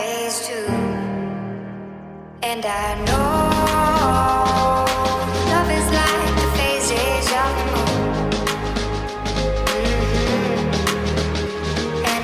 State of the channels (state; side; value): identical; both; correlation 1.00